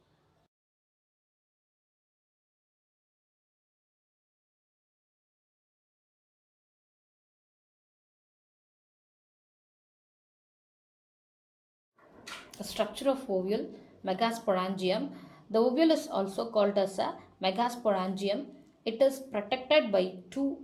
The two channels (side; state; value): both; identical; correlation 1.00